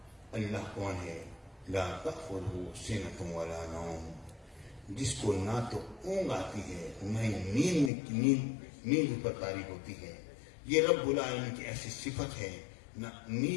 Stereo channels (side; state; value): right; drops out; at 7.9 s